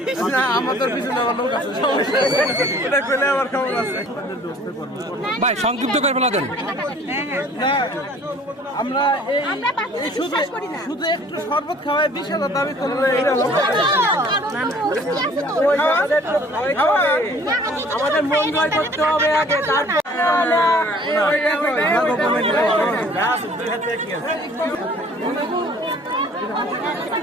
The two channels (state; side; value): normal; both; correlation 0.53